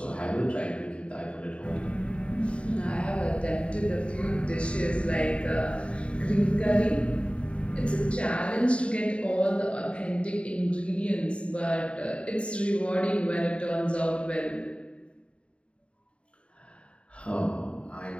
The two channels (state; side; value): late; right; 0.059 ms